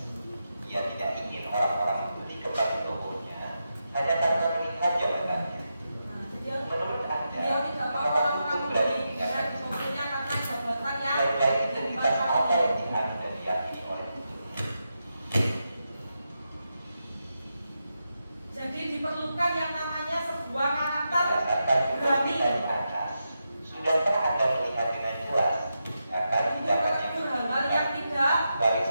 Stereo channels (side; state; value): both; inverted; correlation -0.87